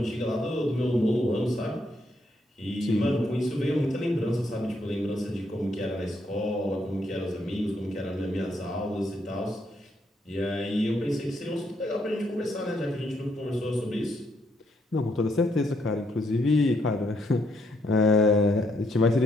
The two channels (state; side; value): normal; both; correlation 0.74